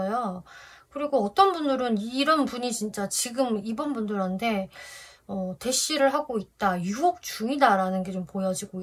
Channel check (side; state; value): both; identical; correlation 1.00